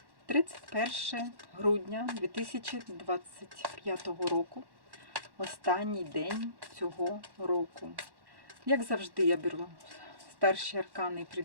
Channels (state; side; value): late; left; 1.1 ms